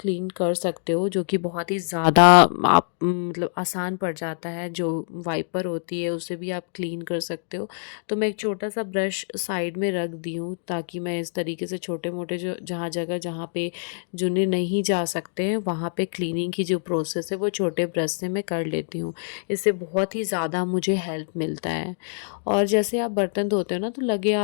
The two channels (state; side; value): silent; right; digital silence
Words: कर सकते हो, जो कि बहुत ही ज़्यादा आप मतलब आसान पड़ जाता है। जो वाइपर होती है उससे भी आप क्लीन कर सकते हो। तो मैं एक छोटा सा ब्रश साइड में रख दी हूँ ताकि मैं इस तरीके से छोटे मोटे जो जहाँ पे जुने नहीं जा सकते हैं वहाँ पे क्लीनिंग की जो प्रोसेस है वो छोटे ब्रश से मैं कर लेती हूँ। इससे बहुत ही ज़्यादा मुझे हेल्प मिलता है। और जैसे आप बर्तन धोते हो ना, तो लगे